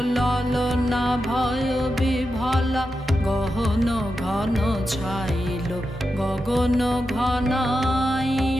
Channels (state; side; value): normal; both; correlation 0.89